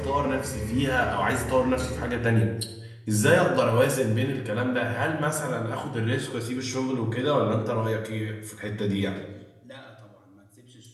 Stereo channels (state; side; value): identical; both; correlation 1.00